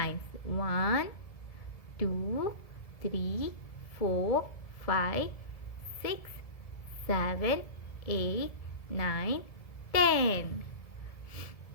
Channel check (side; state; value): right; late; 1.7 ms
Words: 1, 2, 3, 4, 5, 6, 7, 8, 9, 10.